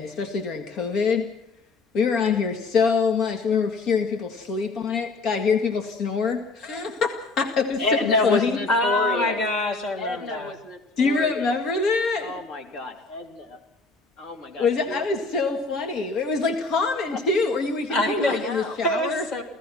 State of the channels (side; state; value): right; quieter; 3.7 dB